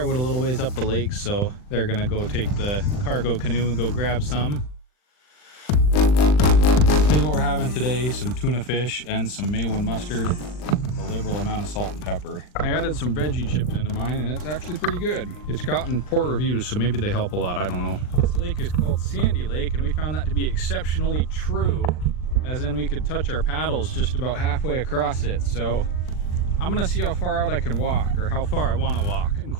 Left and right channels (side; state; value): right; late; 39 ms